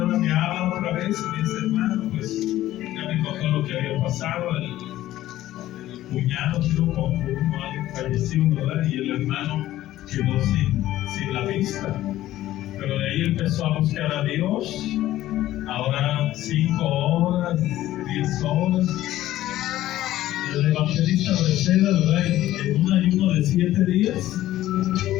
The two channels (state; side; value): quieter; right; 14.4 dB